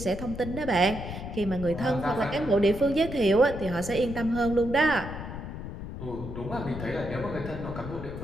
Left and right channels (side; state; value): left; noise; rumble, 8 dB below the sound